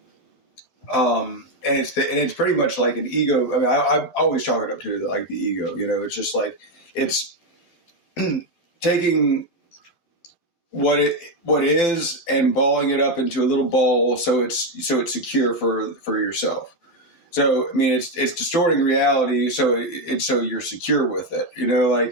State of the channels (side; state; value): right; late; 12 ms